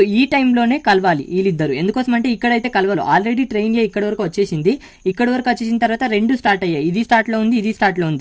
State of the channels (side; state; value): both; identical; correlation 1.00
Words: ఈ టైంలోనే కలవాలి వీళ్ళిద్దరు. ఎందుకోసం అంటే ఇక్కడైతే కలవాలి, ఆల్రెడీ ట్రైన్ ఇక్కడ వరకు వచ్చేసింది. ఇక్కడ వరకు వచ్చేసిన తర్వాత రెండు స్టార్ట్ అయ్యాయి, ఇది స్టార్ట్లో ఉంది ఇది స్టార్ట్లో